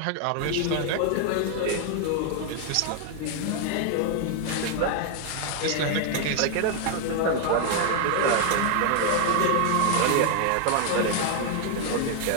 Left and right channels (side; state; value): both; different; correlation 0.00